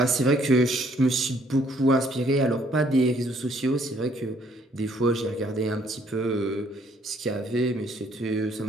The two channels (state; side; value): normal; both; correlation 0.65